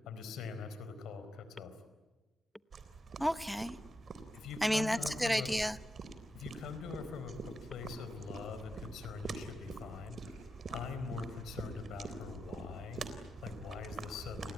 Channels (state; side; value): normal; both; correlation 0.87